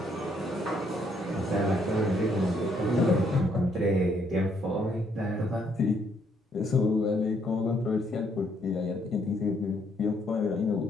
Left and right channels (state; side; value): normal; both; correlation 0.70